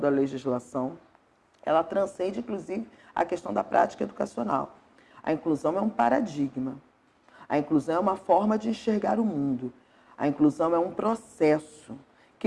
legislação, ela transcende, inclusive, a questão da prática educacional. A inclusão é um paradigma. A inclusão é uma forma de enxergar o mundo. A inclusão é um processo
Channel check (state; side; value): identical; both; correlation 1.00